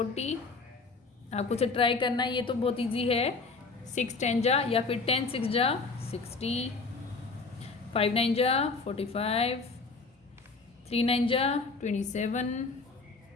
आपको से ट्राई करना है, ये तो बहुत इजी है। 6 10 जा या फिर 10 6 जा 60, 5 9 जा 45, 3 9 जा 27,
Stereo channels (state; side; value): quieter; right; 4.1 dB